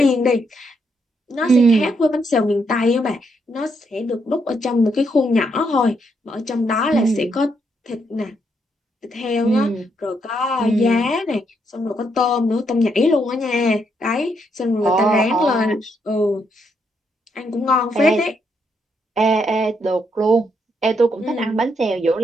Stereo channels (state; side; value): normal; both; correlation 0.77